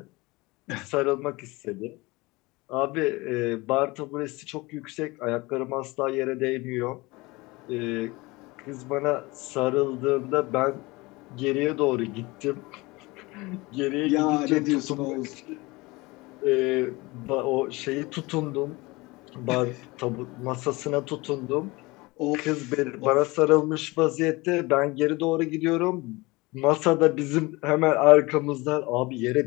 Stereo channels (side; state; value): right; quieter; 23.1 dB